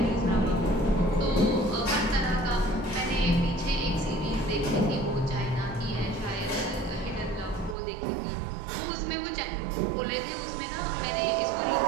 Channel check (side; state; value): left; drops out; at 7.8 s